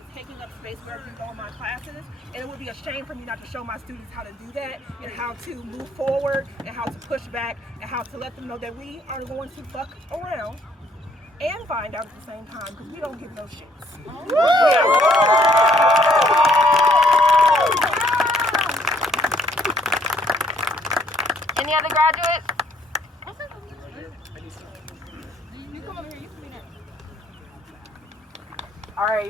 taking up space wherever you go in my classes. And it would be a shame for me not to show my students how to do that, and how to move forward, and how to push back, and how to let them know that we are going to fuck around and find out at the same time, because we don't give no shits. Any other graduates? You come over here, you can be next. All right,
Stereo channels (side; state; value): both; normal; correlation 0.65